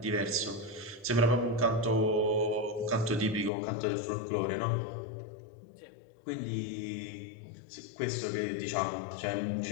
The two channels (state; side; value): drops out; right; at 3.5 s